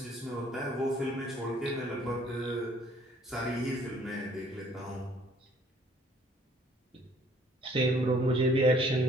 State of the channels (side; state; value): both; normal; correlation 0.59